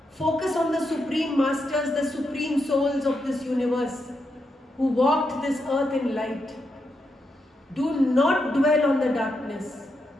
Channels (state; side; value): normal; both; correlation 0.83